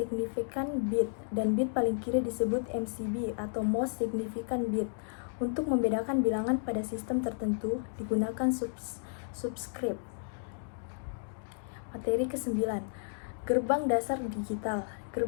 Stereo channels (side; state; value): right; silent; digital silence